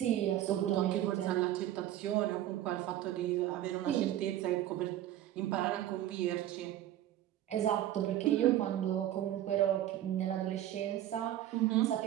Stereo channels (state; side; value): quieter; left; 12.7 dB